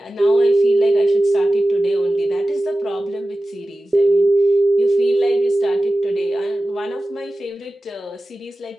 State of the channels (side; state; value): both; normal; correlation 0.95